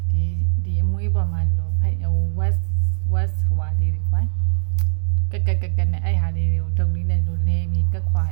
ဒီအမွေးပေါ်မှာလို့west ဟွာလေးတွေပိုင်းကနဲ့အဲ့ဟာလေးတွေကိုဒုံလေးနဲ့လို့လဲပြီးကက်ခွာ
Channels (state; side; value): silent; left; digital silence